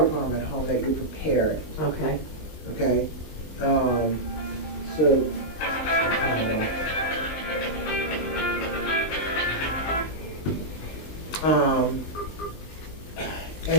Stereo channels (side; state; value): right; late; 20 ms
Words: problem at home, that you're prepared. Okay. Okay?